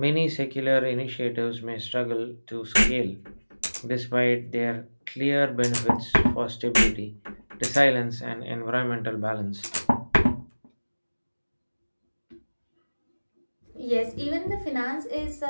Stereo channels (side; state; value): both; inverted; correlation -1.00